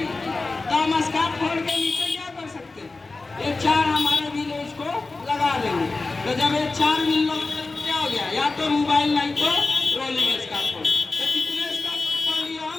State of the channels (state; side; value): quieter; right; 3.6 dB